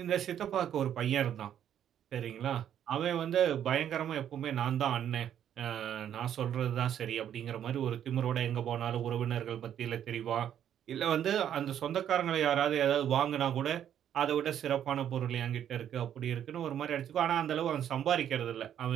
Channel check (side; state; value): left; quieter; 9.9 dB